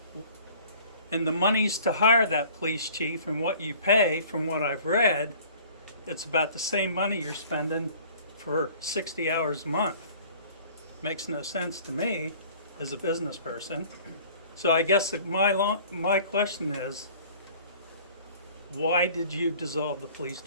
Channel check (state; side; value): inverted; both; correlation -0.50